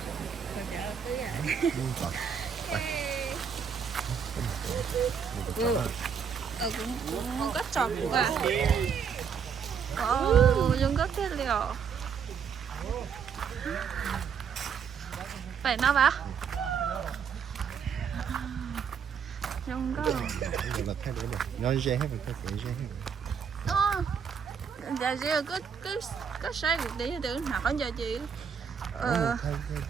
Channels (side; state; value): left; quieter; 6.9 dB